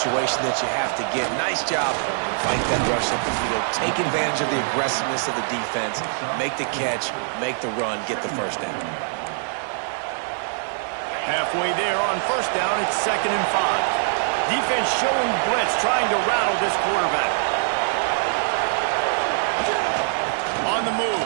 that you have to get. Nice job. Fight that rush up the field. Take advantage of the aggressiveness of the defense. Make the catch. Make the run. Get the first down. Halfway there on first down, it's 2nd and 5. Defense showing blitz, trying to rattle this quarterback. On the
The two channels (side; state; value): left; silent; 61 dB below the other